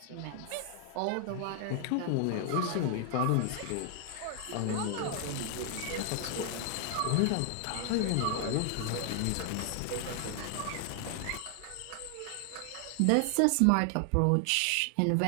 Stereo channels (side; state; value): both; different; correlation 0.00